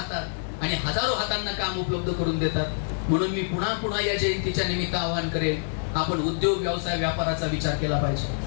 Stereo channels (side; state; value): right; silent; 58 dB below the other